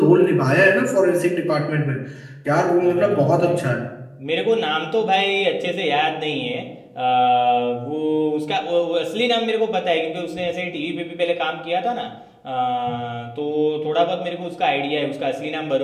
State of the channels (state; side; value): identical; both; correlation 1.00